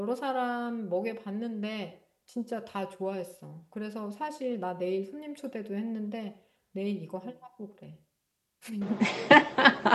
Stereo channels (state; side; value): identical; both; correlation 1.00